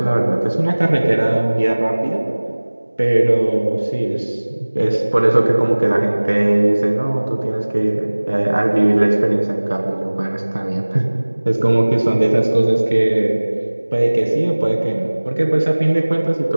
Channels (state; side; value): inverted; both; correlation -1.00